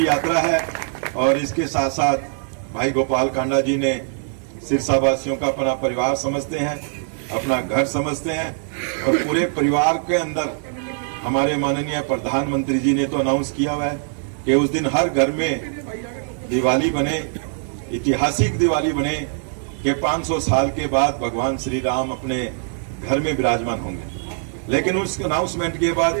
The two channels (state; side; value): silent; left; 56 dB below the other